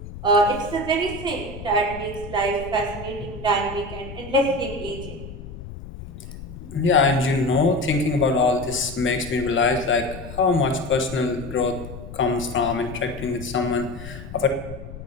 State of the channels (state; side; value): noise; left; rumble, 12 dB below the sound